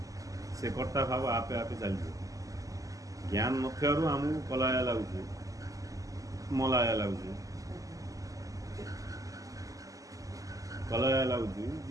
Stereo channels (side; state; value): left; late; 0.17 ms